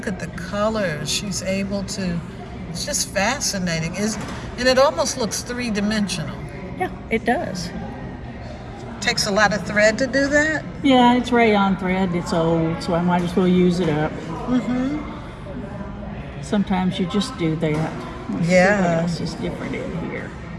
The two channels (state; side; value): identical; both; correlation 1.00